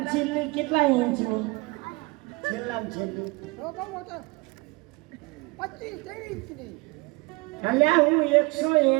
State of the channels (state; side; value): quieter; left; 25.4 dB